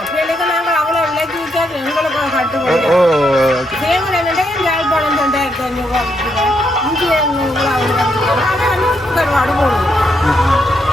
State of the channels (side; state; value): both; normal; correlation 0.78